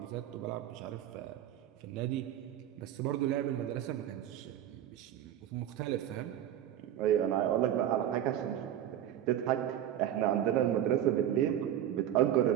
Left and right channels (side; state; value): left; quieter; 11.3 dB